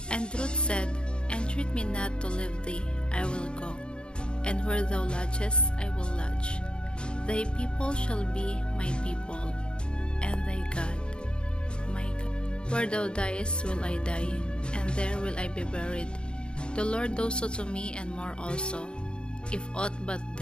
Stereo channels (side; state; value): right; late; 0.051 ms